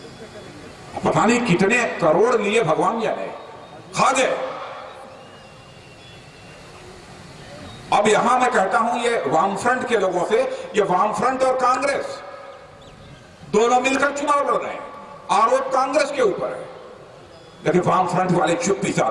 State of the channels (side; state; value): both; identical; correlation 1.00